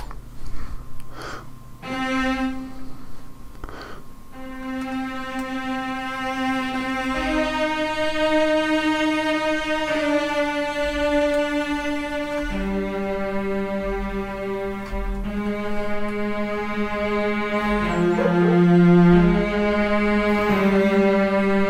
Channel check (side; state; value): both; identical; correlation 1.00